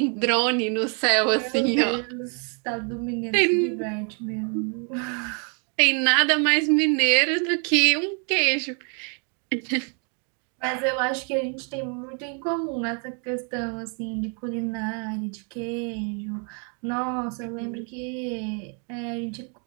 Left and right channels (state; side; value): quieter; left; 39.6 dB